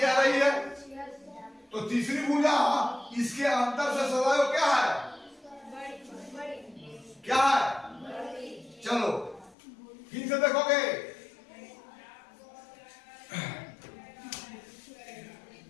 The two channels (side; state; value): right; drops out; at 9.6 s